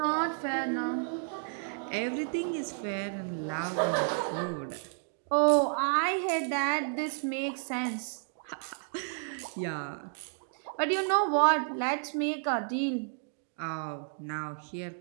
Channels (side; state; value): left; silent; digital silence